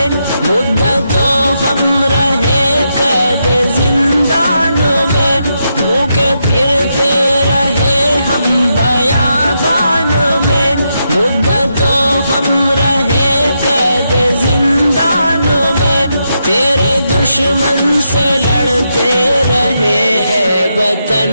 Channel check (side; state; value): both; inverted; correlation -0.83